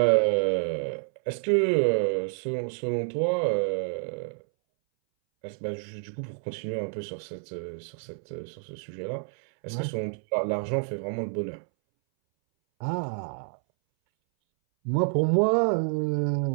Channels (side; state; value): left; silent; 59 dB below the other